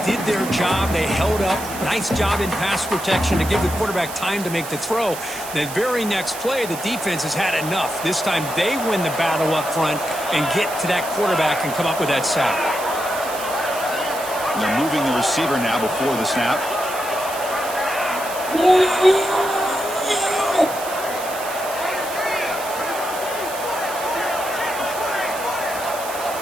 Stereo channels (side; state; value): right; noise; hiss, 11 dB below the sound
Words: did their job. They held up. Nice job in pass protection to give the quarterback time to make the throw. The very next play, the defense has had enough. This time they win the battle up front and get to that quarterback and come up with that sack. They're moving the receiver now before the snap.